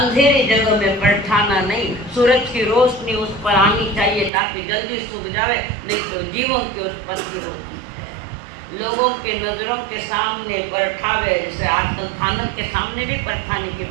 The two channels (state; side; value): drops out; left; at 4.3 s